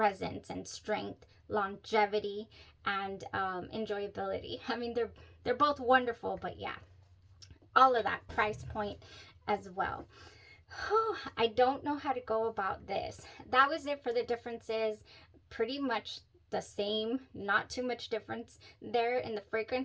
and strength, longevity, and enjoyability. I mean, they're both wonderful, but yeah, all of that price point as well. I don't know how to go about this. That was it for the differences. Pretty much the same, not too much difference there in the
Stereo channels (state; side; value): identical; both; correlation 1.00